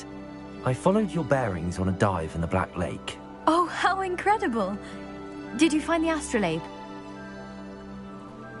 I followed your bearings on a dive in the Black Lake. Oh, how incredible! Did you find the astrolabe?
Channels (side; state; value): both; identical; correlation 1.00